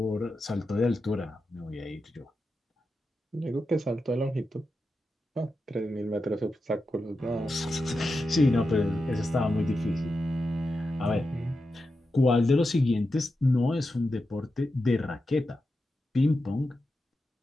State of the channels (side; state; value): both; normal; correlation 0.89